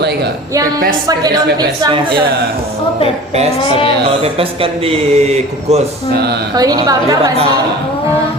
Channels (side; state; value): both; normal; correlation 0.40